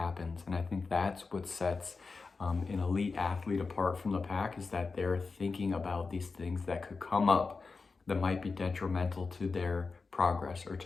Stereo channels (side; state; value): right; quieter; 4.3 dB